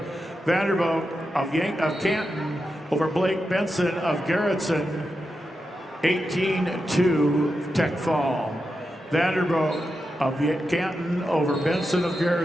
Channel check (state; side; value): normal; both; correlation 0.88